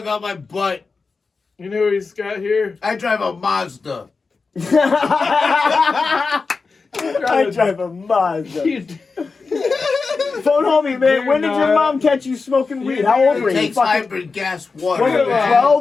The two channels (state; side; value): quieter; right; 4.4 dB